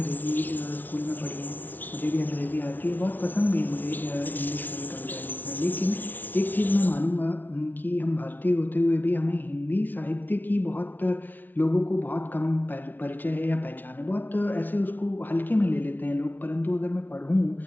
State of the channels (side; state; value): right; late; 0.085 ms